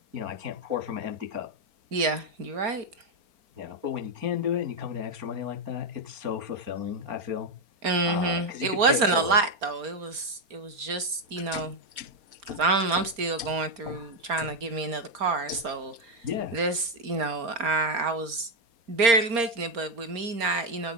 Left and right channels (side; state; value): left; late; 4.3 ms